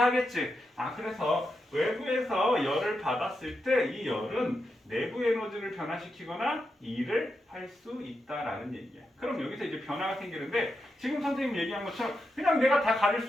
그래서 외부에서 열을 받았을 때 이 열은 내부 에너지를 변화시키거나 일을 할 수 있다라는 얘기야. 그럼 여기서 이제 변화가 생기는데 지금 선생님 얘기한 것처럼 그냥 내가 다 가릴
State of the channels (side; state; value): both; normal; correlation 0.86